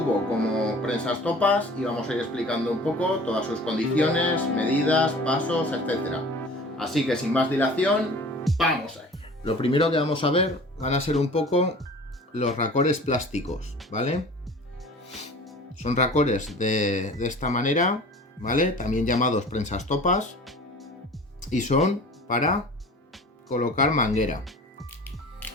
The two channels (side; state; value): both; normal; correlation 0.43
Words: como prensas topas y vamos a ir explicando un poco todas sus condiciones, medidas, pasos, etcétera. Así que sin más dilación, ¡vamos ahí! Lo primero que vamos a ver van a ser un poco los racores plásticos, ¿vale? Son racores de esta manera, ¿vale? También llamados prensas topas, y son para colocar manguera.